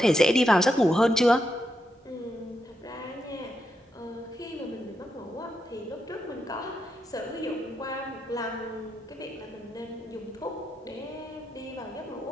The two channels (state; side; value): normal; both; correlation 0.84